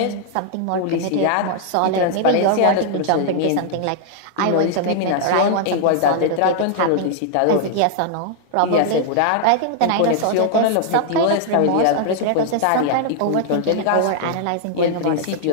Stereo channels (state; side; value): different; both; correlation -0.01